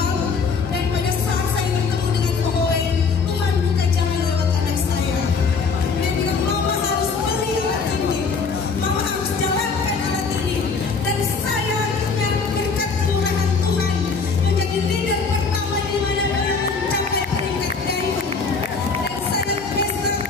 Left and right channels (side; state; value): right; quieter; 5.0 dB